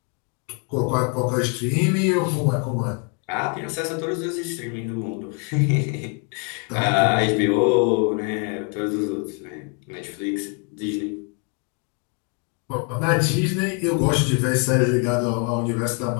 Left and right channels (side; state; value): right; quieter; 37.8 dB